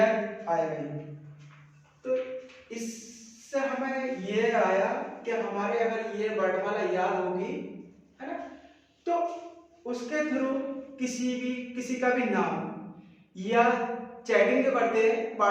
तो इससे हमें ये आया कि हमारे अगर ये वर्णमाला याद होगी, है ना, तो उसके थ्रू किसी का भी नाम या चैटिंग जो करते हैं,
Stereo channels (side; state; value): both; identical; correlation 1.00